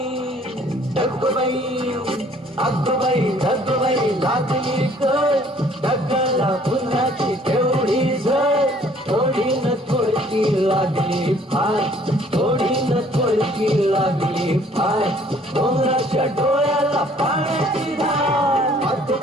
लागली कळ ढगाला उन्हाची तेवढी झळ थोडीनं थोडकी लागली फार थोडीनं थोडकी लागली फार डोंगराच्या डोळ्याला पाण्याची धार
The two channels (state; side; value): normal; both; correlation 0.58